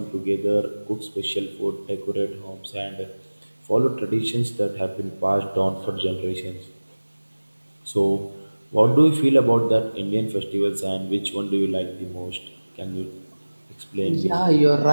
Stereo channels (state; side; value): inverted; both; correlation -1.00